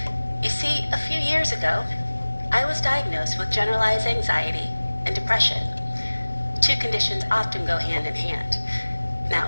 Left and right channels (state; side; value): inverted; both; correlation -1.00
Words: You see, a few years ago, I was diagnosed with generalized anxiety and depression. Two conditions often go hand in hand. Now,